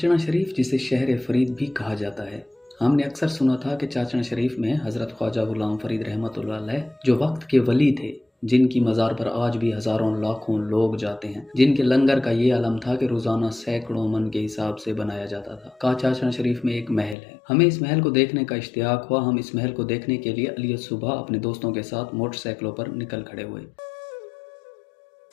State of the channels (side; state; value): right; drops out; at 17.2 s